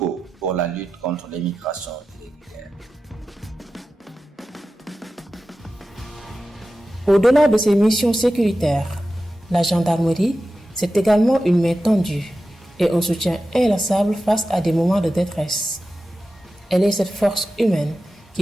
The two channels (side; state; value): both; normal; correlation 0.93